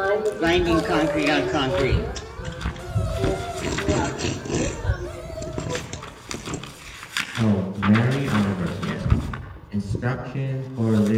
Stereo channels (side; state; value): both; identical; correlation 1.00